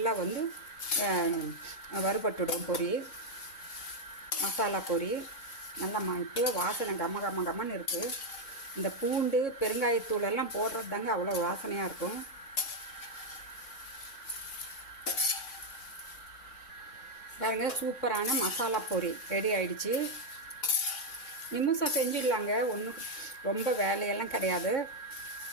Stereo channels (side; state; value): right; late; 3.6 ms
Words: வறுபட்டுடும் பொரி. மசாலா பொரி நல்லா இப்போ வாசனை கம்மன்னு இருக்குது. இந்த பூண்டு பெருங்காயத்தூள் எல்லாம் போடுறது தாங்க அவ்வளோ வாசனையாக இருக்கும். பாருங்க, சூப்பரான மசாலா பொரி ரெடி ஆயிடுச்சு. நிமிஷம் செஞ்சிடலாங்க, ஒன்றும் ரொம்ப வேலையெல்லாம் கிடையாது.